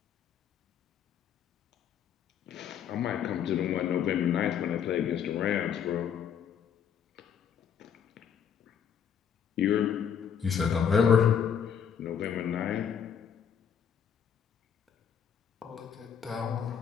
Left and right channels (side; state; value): right; quieter; 7.9 dB